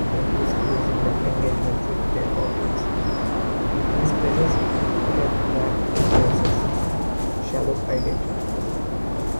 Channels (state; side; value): inverted; both; correlation -1.00